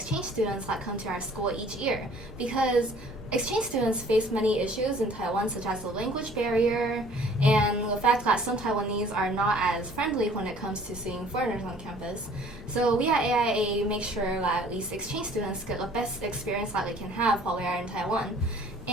students that come to our school each year, because exchange students face many issues in Taiwan, such as the language barrier and the fact that some Taiwanese are not as friendly when it comes to seeing foreigners on campus. So we at AIA make sure that these exchange students get the best experience that they can have while they are in Taiwan.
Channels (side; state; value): both; normal; correlation 0.53